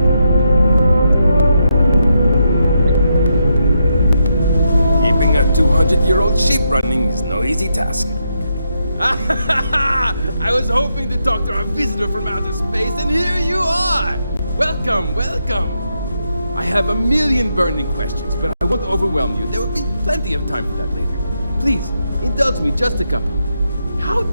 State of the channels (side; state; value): both; inverted; correlation -0.82